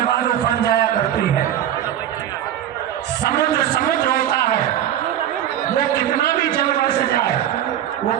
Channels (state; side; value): quieter; left; 11.1 dB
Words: बाद उफान जाया करती है, समुद्र समुद्र होता है, वो कितना भी जल बरस जाए वो